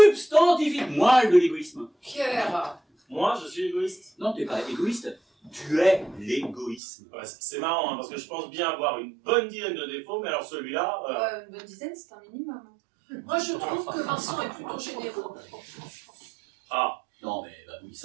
moelle de l'égoïsme. Pierre. Moi, je suis égoïste. Non, t'es pas égoïste, tu es l'égoïsme. Ouais, c'est marrant, hein, parce que je pense bien avoir une bonne dizaine de défauts, mais alors celui-là... Une bonne dizaine, c'est un minimum. Moi, je trouve que Vincent est plutôt généreux. Ah, Non mais bah oui,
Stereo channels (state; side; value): drops out; left; at 6.8 s